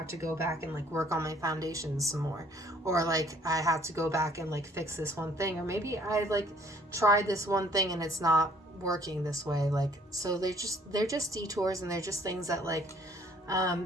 to go back and like work on my foundations some more, or like I have to go back and like fix this one thing, or maybe I like tried this one thing and it's not working this way. Like, so they're just detours, and they're just things that like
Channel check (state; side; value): normal; both; correlation 0.59